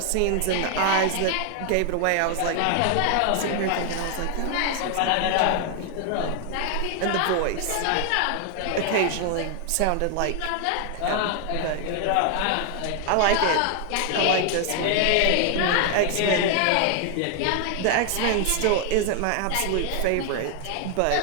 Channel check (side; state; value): both; different; correlation 0.00